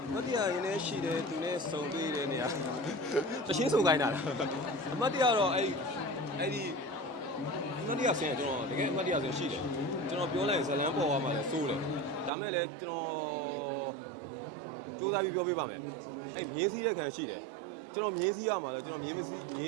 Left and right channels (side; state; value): left; drops out; at 12.3 s